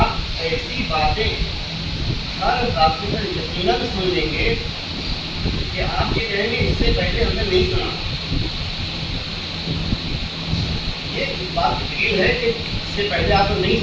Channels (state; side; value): identical; both; correlation 1.00